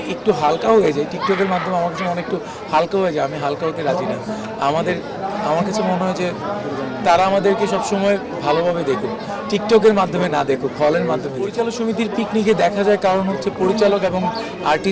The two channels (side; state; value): both; identical; correlation 1.00